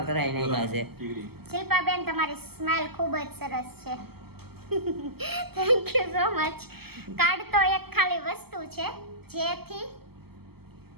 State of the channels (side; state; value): left; late; 0.96 ms